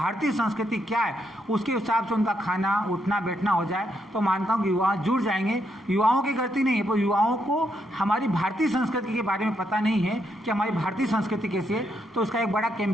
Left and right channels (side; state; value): both; normal; correlation 0.78